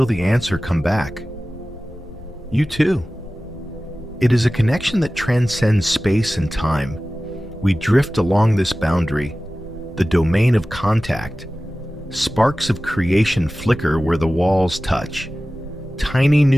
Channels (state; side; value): normal; both; correlation 0.96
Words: the answer come back. You too. It is a connection that transcends space and time. We drift along this boundary, the domain of contact. Sparks of creation flicker where the walls touch. Tiny